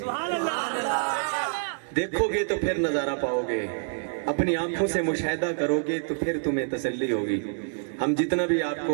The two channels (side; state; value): left; silent; 60 dB below the other